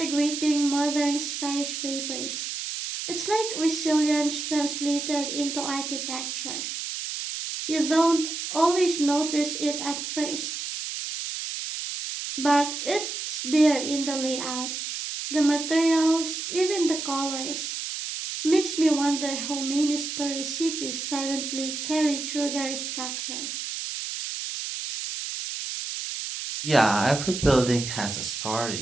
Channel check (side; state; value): right; noise; hiss, 5 dB below the sound